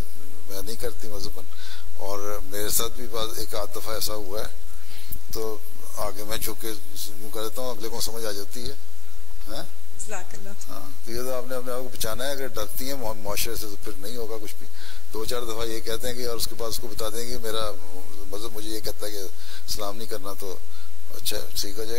नहीं करती मज़हबन। और मेरे साथ भी एक आध दफ़ा ऐसा हुआ है, तो आगे मैं झुक के यूँ कर देता हूँ, अगले को समझ आ जाती है। हाँ, तो ये तो आपने अपने आप को बचाना है। अगर डरती हैं मुआशरे से तो फिर नहीं होगा कुछ भी। 2-4 दफ़ा ये कहते हैं कि, और उसके बाद उसको बता देंगे कि मेरा मज़हब मुझे ये कहता है कि सलाम नहीं करना, तो अच्छा ठीक हो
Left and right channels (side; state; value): right; quieter; 3.0 dB